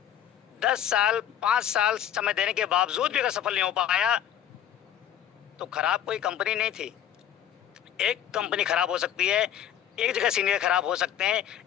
10 साल 5 साल समय देने के बावजूद भी अगर सफल नहीं हो पाया तो खराब कोई कंपनी नहीं थी। एक कंपनी खराब हो सकती है, एक जगह सीनियर खराब हो सकते हैं,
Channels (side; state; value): right; quieter; 10.3 dB